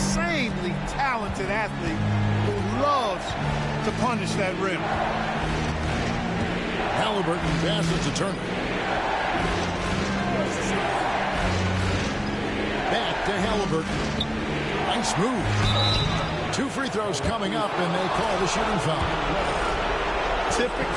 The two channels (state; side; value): identical; both; correlation 1.00